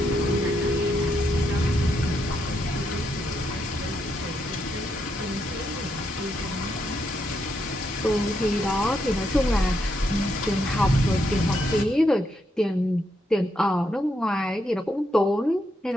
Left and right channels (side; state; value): both; normal; correlation 0.79